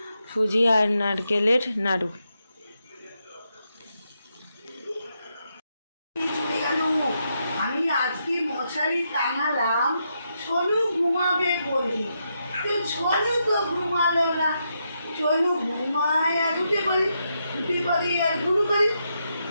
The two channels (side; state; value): both; inverted; correlation -0.83